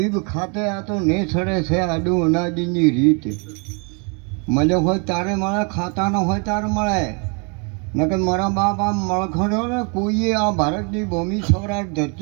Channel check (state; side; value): quieter; left; 35.3 dB